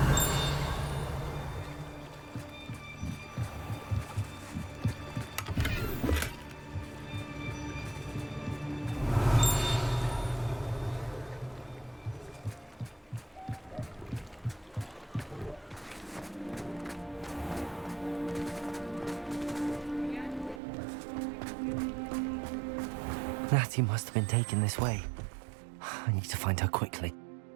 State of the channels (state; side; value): drops out; left; at 20.6 s